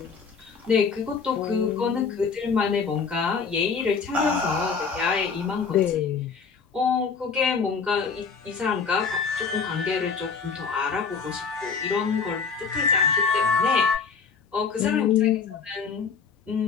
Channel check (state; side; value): quieter; right; 5.5 dB